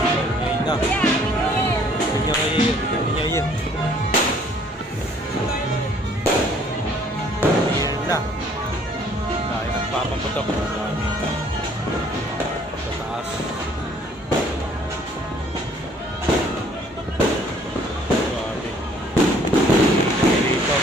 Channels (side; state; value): both; normal; correlation 0.59